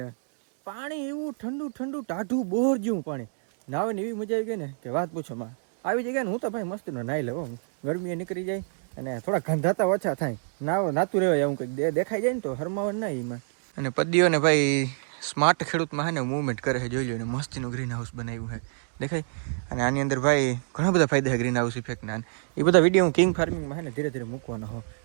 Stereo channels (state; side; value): silent; left; digital silence